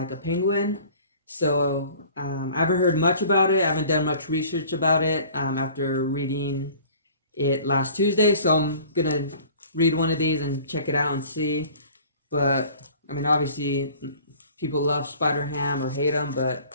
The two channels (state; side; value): inverted; both; correlation -0.48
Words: a penguin. So I haven't heard much about it. I haven't done much research about it after reading it last Tuesday. So I'm going to read one of these and check it out and see. But, I mean, obviously, people love Spider-Ham or hate him, but